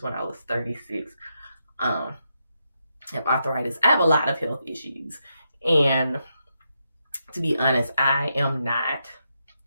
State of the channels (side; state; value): both; inverted; correlation -0.83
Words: when I was 36. I have arthritis. I have a lot of health issues. And to be honest, I am not